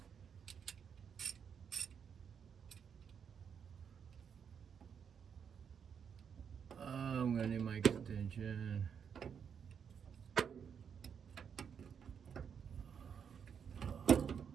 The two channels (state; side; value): quieter; left; 7.3 dB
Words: Oh. I'm gonna need my extension.